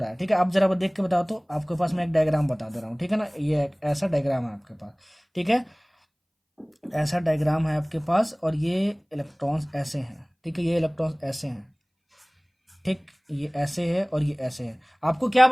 है। ठीक है, आप जरा देख के बताओ। तो आपके पास मैं एक डायग्राम बता दे रहा हूँ, ठीक है ना, ये एक ऐसा डायग्राम है आपके पास। ठीक है, ऐसा डायग्राम है आपके पास और ये इलेक्ट्रॉन्स ऐसे हैं। ठीक है, ये इलेक्ट्रॉन्स ऐसे हैं, ठीक, ये ऐसे है और ये ऐसे है। आपको क्या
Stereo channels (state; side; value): identical; both; correlation 1.00